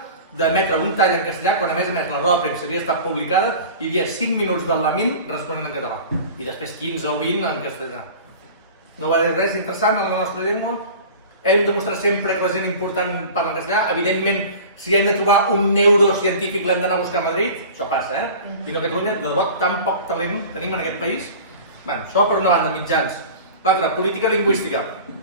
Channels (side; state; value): both; inverted; correlation -0.39